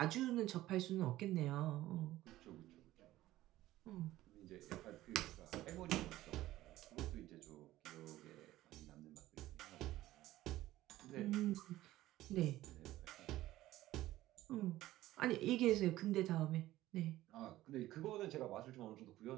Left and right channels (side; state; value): left; quieter; 15.5 dB